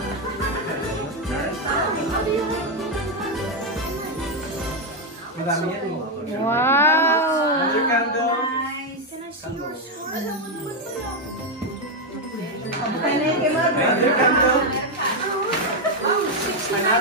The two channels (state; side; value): normal; both; correlation 0.04